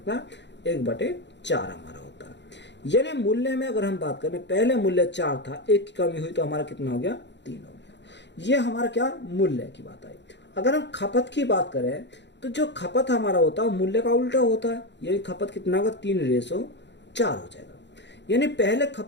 1/4 हमारा होता है। यानी मूल्य में अगर हम बात करें, पहले मूल्य 4 था, 1 की कमी हुई तो हमारा कितना हो गया, 3 हो गया। ये हमारा क्या, मूल्य की बात आई। अगर हम खपत की बात करें तो जो खपत हमारा होता है मूल्य का उल्टा होता है, यानी खपत कितना होगा, 3:4 हो जाएगा। यानी पहले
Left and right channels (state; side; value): late; right; 0.52 ms